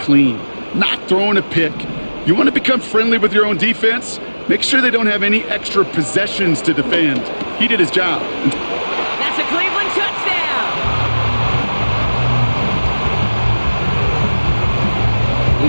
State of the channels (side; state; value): both; inverted; correlation -1.00